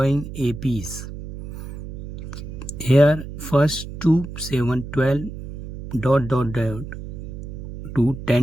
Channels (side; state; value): right; noise; hum, 10 dB below the sound